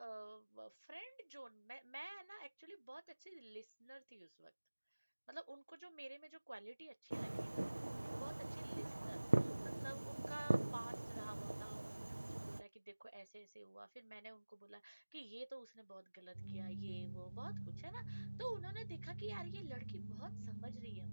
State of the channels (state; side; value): inverted; both; correlation -1.00